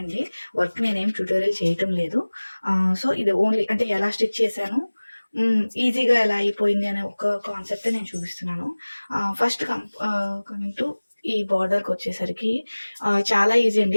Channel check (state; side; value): inverted; both; correlation -1.00